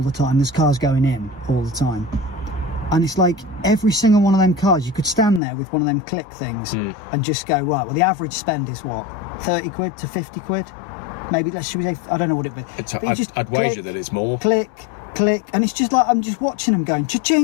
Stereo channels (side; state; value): right; drops out; at 5.4 s